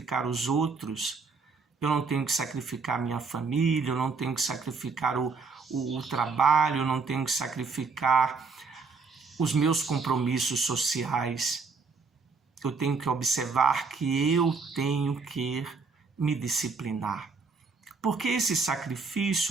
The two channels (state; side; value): quieter; left; 4.6 dB